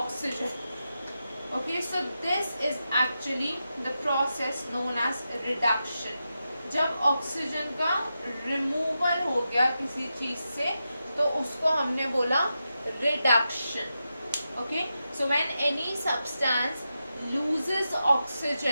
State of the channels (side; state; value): both; inverted; correlation -0.89